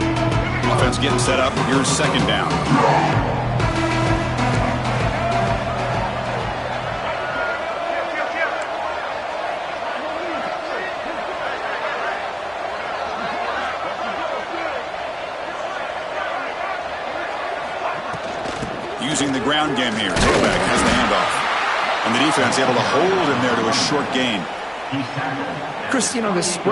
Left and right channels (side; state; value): both; identical; correlation 1.00